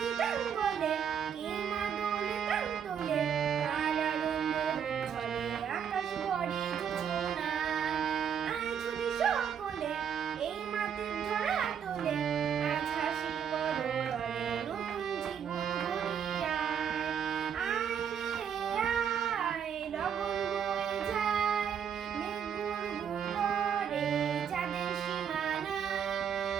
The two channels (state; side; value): quieter; left; 8.0 dB